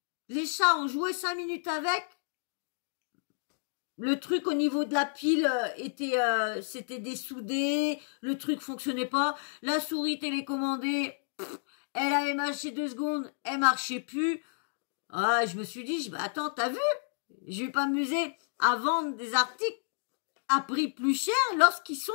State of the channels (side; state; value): right; silent; digital silence